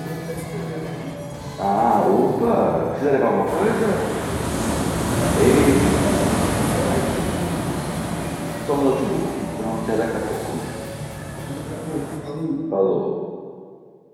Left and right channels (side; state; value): both; identical; correlation 1.00